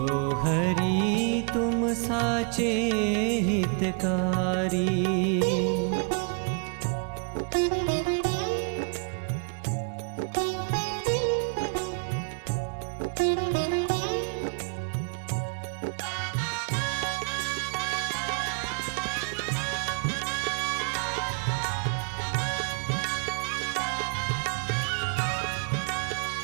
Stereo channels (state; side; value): quieter; left; 37.5 dB